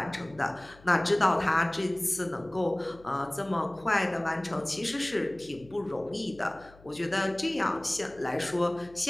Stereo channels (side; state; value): left; noise; hum, 24 dB below the sound